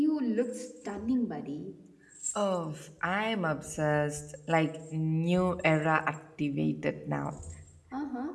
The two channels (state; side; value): identical; both; correlation 1.00